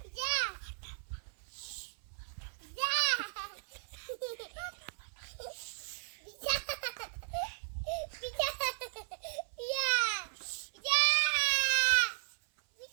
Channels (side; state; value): left; silent; 54 dB below the other